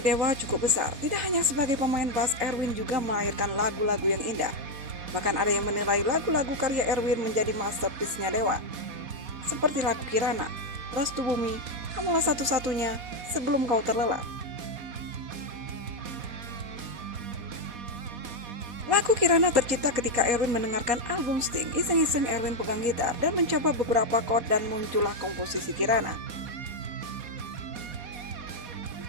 Dewa cukup besar. Tidak hanya sebagai pemain bass, Erwin juga melahirkan lagu-lagu yang indah. Bahkan ada yang menilai lagu-lagu karya Erwin menjadi masterpiece-nya Dewa. Seperti lagu Kirana, Restu Bumi, Kamulah Satu-Satunya, Sebelum Kau Terlelap. Lagu Kirana tercipta ketika Erwin mendengarkan album Sting. Iseng-iseng Erwin pegang gitar dan mencoba beberapa chord dan muncullah komposisi Kirana.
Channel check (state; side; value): late; left; 4.2 ms